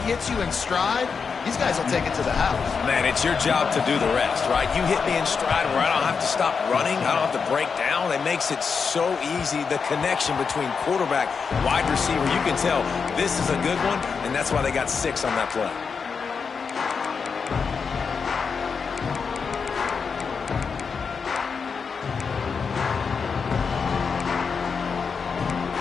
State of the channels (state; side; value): quieter; right; 5.6 dB